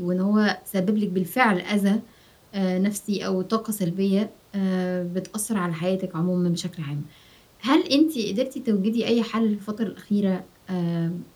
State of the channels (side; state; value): both; identical; correlation 1.00